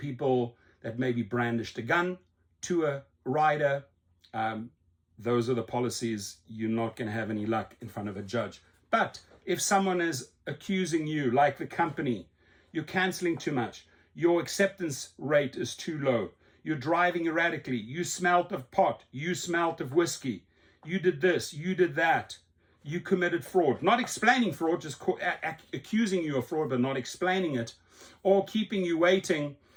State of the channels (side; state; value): both; identical; correlation 1.00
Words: that maybe brandished a gun to a rider. Those are the policies. You're not going to have any luck in front of a judge. But if someone is accusing you, like the company, you're canceling too much, your acceptance rate is too low, you're driving erratically, you smelt of pot, you smelt of whiskey, you did this, you did that, you committed fraud, not explaining fraud, just accusing you of fraud but not explaining it, or keeping you waiting